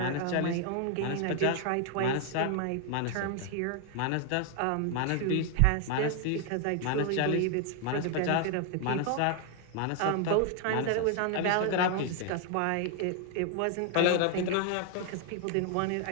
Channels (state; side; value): different; both; correlation 0.00